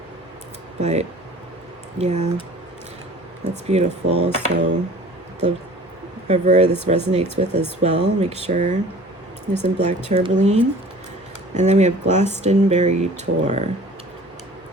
But yeah, that's beautiful. So whoever this resonates with as well, make sure there's some black tourmaline. And then we have Glastonbury Tour,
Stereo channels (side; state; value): both; normal; correlation 0.46